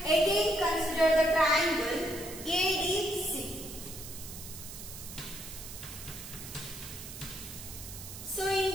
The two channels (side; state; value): right; noise; hiss, 11 dB below the sound